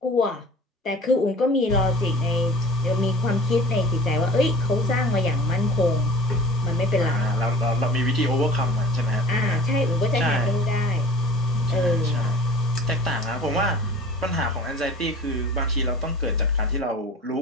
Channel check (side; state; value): both; normal; correlation 0.42